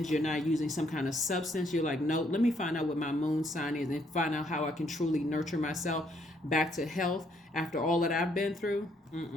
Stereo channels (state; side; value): normal; both; correlation 0.70